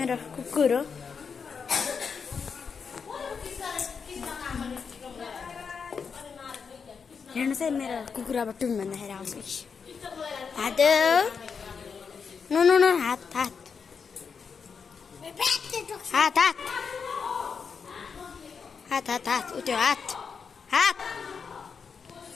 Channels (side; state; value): right; quieter; 5.9 dB